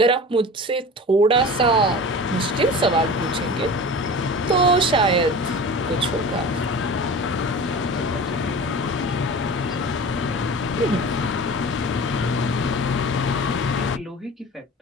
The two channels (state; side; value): normal; both; correlation 0.36